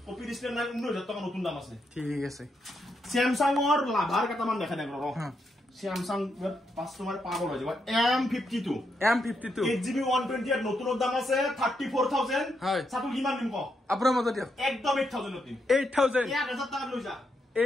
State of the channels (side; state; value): both; normal; correlation 0.81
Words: কপি ডিসপ্লে নাই 19000 টাকা নতুন দাম আছে ঠিক আছে স্যামসাংৰ লাভাৰ কেটামান দেখাই দেখ ৰ স্যামসাং কাস্টমাৰ পাগল হৈ যাব M52 8GB 128 নতুন দাম আছে 34000 হয় সাতু কিমান দিম ক আপোনাৰ মতে দিয়ক একদম 8000 দিম 8000 1000 টাকা লৈ যা